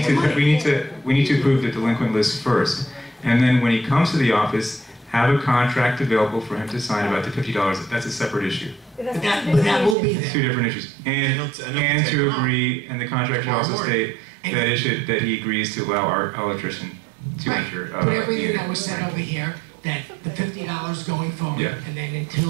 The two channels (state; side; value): drops out; left; at 10.0 s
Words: the money? we need to approve the delinquent list first. And then when he comes to the office, have a contract available for him to sign about the $50. That's a separate issue. But that will be It's two there. different issues. And to agree, and the contract should also state that he agrees to allow our electrician to Right. enter. Put everything that was said over here, that the $50 going forward, Yeah. and then